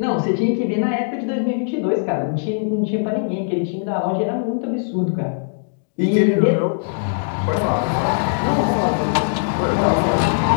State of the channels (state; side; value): silent; right; digital silence